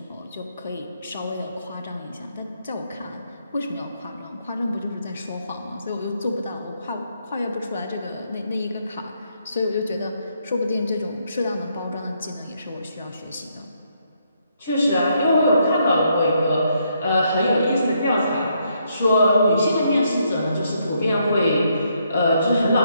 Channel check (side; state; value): both; inverted; correlation -0.75